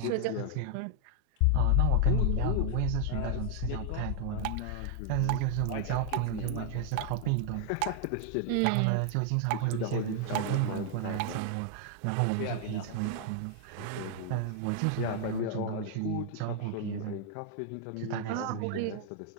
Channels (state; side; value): different; both; correlation 0.00